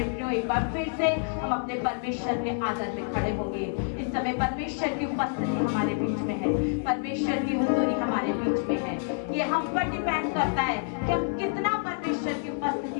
प्रियो, एक बार फिर से हम अपने परमेश्वर के आदर में खड़े होंगे। इस समय परमेश्वर की उपस्थिति हमारे बीच में है, परमेश्वर की हुजूरी हमारे बीच में है। ये हम पर डिपेंड करता है कि हम कितना परमेश्वर की उपस्थिति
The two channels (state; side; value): silent; right; 59 dB below the other